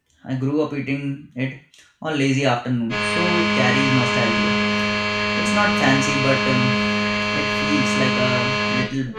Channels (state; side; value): identical; both; correlation 1.00